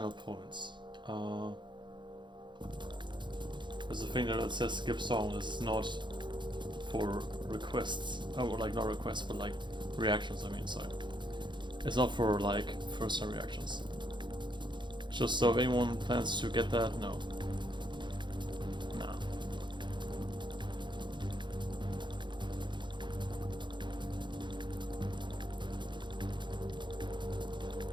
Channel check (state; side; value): late; left; 0.23 ms